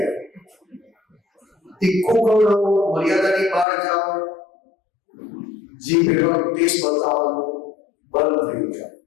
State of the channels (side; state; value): right; drops out; at 3.7 s